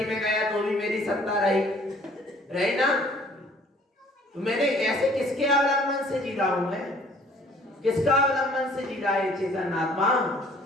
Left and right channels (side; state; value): both; normal; correlation 0.56